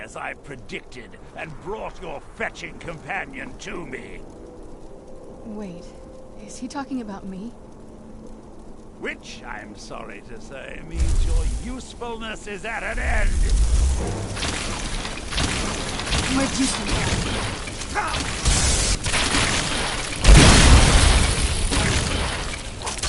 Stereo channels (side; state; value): both; identical; correlation 1.00